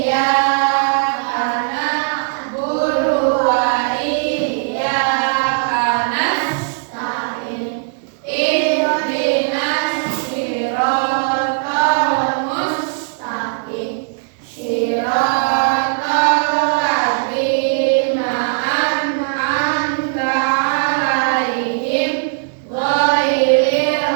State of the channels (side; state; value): left; silent; 67 dB below the other